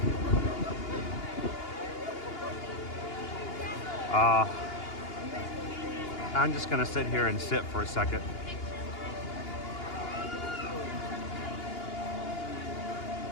I'm just gonna sit here and sit for a second.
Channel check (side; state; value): right; late; 2.8 ms